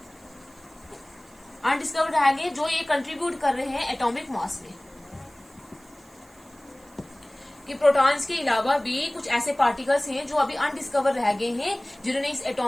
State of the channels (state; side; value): noise; right; hiss, 28 dB below the sound